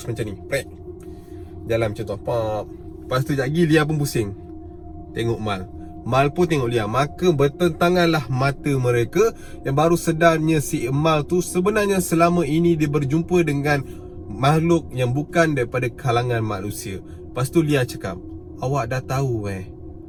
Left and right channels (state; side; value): identical; both; correlation 1.00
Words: macam ni, prek, jalan macam tu, pop. Lepas tu sekejap lagi Lia pun pusing tengok Mal. Mal pun tengok Lia. Maka bertentanganlah mata mereka, yang baru sedarnya si Mal tu sebenarnya selama ini dia berjumpa dengan makhluk yang bukan daripada kalangan manusia. Lepas tu Lia cakap, awak dah tahu